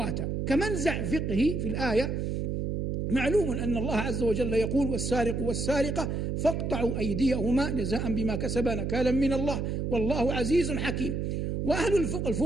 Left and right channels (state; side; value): noise; right; hum, 1 dB below the sound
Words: كمنزع فقهي في الآية، معلوم أن الله عز وجل يقول: والسارق والسارقة فاقطعوا أيديهما جزاء بما كسبا نكالا من الله والله عزيز حكيم. وأهل